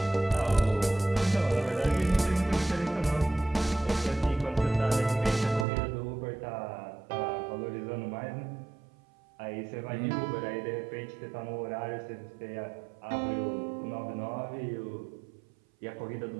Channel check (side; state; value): left; drops out; at 5.7 s